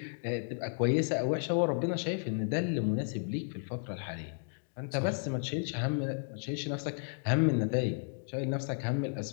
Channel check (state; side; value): silent; right; digital silence